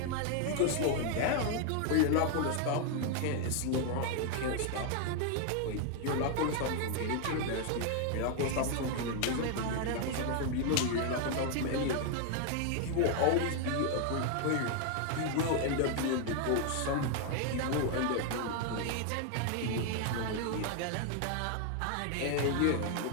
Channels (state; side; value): different; both; correlation 0.00